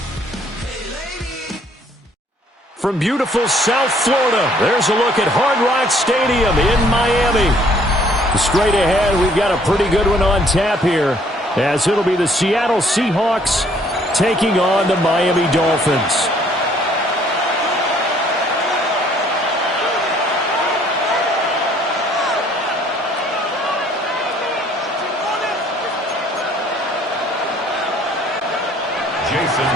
Hey lady. From beautiful South Florida, there's a look at Hard Rock Stadium in Miami. Straight ahead, we've got a pretty good one on tap here, as it'll be the Seattle Seahawks taking on the Miami Dolphins. Jason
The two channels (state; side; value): normal; both; correlation 0.61